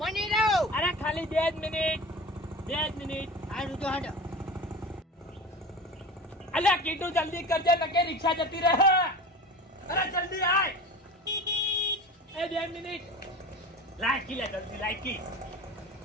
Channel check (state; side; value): normal; both; correlation 0.34